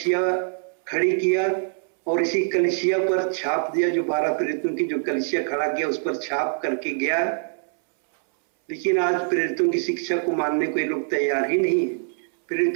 खड़ी किया और इसी कलीसिया पर छाप दिया, जो 12 प्रेरितों की जो कलीसिया खड़ा किया उस पर छाप करके गया। लेकिन आज प्रेरितों की शिक्षा को मानने को ये लोग तैयार ही नहीं है,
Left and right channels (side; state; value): left; silent; 63 dB below the other